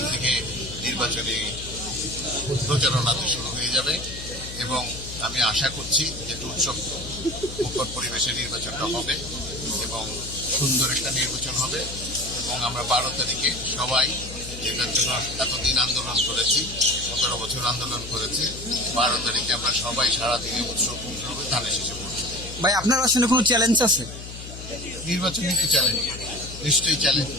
থেকে নির্বাচনী প্রচারণাতে শুরু হয়ে যাবে এবং আমি আশা করছি যে উৎসব মুখর পরিবেশে নির্বাচনটা হবে এবং সুন্দর একটা নির্বাচন হবে এবং আমরা 12 তারিখে সবাই যেটার জন্য এতদিন আন্দোলন করেছি, 17 বছর আন্দোলন করেছি, 12 তারিখে আমরা সবাই সারাদিনে উৎসব মুখর হবে ধানের শেষে পড়ছি। ভাই আপনার আসলে কোনো চ্যালেঞ্জ আছে? নির্বাচনী তো চ্যালেঞ্জ, নিশ্চয়ই চ্যালেঞ্জ,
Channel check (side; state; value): left; noise; hum, 12 dB below the sound